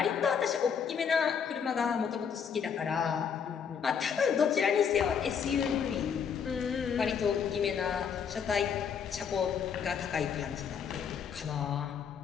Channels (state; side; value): quieter; right; 7.1 dB